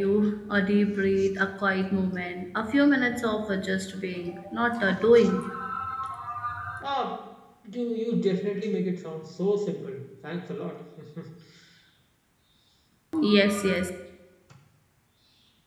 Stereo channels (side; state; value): both; identical; correlation 1.00